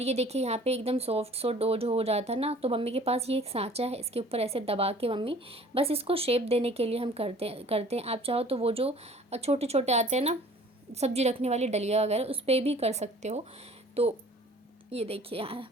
ये देखिए यहाँ पे एकदम सॉफ्ट सो डो जो हो जाता है ना, तो मम्मी के पास ये एक सांचा है, इसके ऊपर ऐसे दबा के मम्मी बस इसको शेप देने के लिए हम करते हैं। आप चाहो तो वो जो छोटे छोटे आते हैं ना सब्जी रखने वाली डलिया वगैरह, उस पर भी कर सकते हो। तो ये देखिए यहाँ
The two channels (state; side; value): normal; both; correlation 0.50